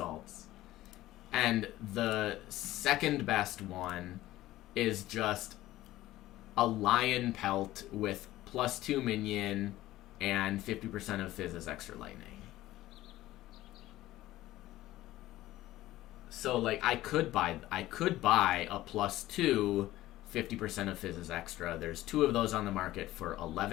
And the second best one is just a lion pelt with +2 minion and 50% of Fizz's extra lightning. So like I could buy a +2 50% of Fizz's extra. There's 2 of those on the market for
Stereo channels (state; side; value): quieter; right; 15.8 dB